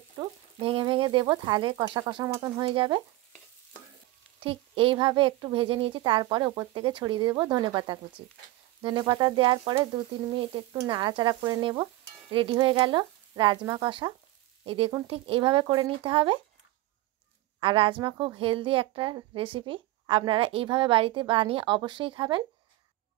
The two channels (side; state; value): left; quieter; 17.4 dB